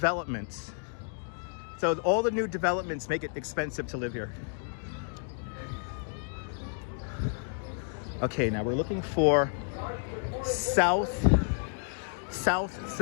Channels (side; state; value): right; silent; 57 dB below the other